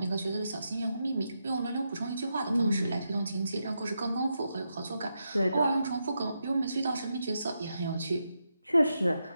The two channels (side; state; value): both; inverted; correlation -0.85